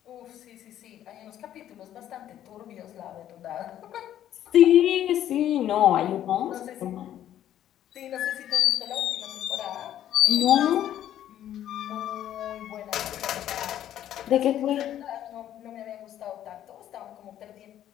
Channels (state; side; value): quieter; right; 11.5 dB